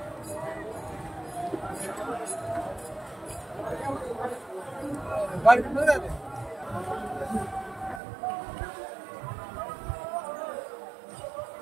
गाडी कुठे जाते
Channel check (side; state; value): left; drops out; at 8.0 s